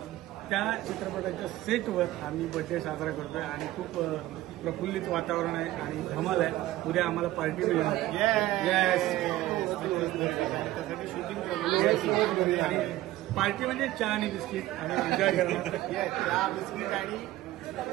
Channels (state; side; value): quieter; left; 16.0 dB